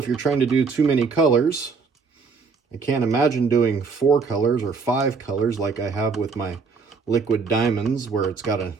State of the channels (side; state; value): left; quieter; 4.9 dB